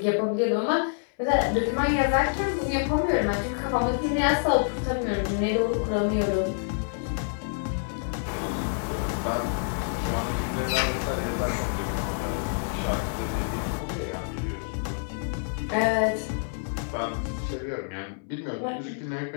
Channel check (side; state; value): right; silent; 60 dB below the other